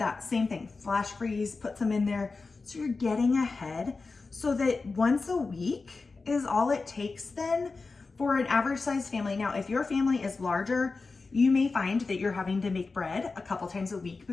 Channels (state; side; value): quieter; right; 4.0 dB